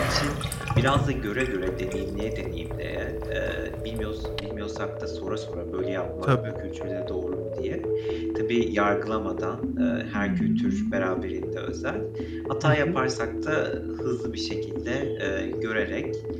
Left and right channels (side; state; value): both; identical; correlation 1.00